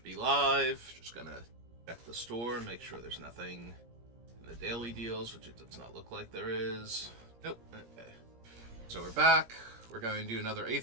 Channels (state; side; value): late; left; 17 ms